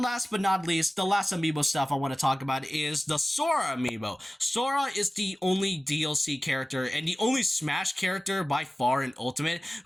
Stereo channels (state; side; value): normal; both; correlation 0.96